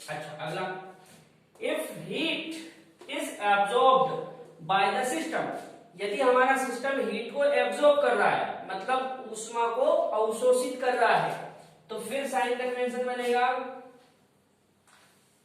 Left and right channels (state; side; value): identical; both; correlation 1.00